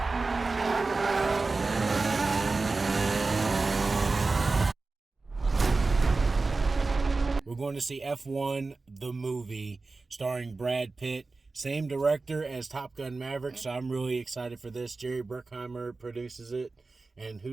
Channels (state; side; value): quieter; left; 3.7 dB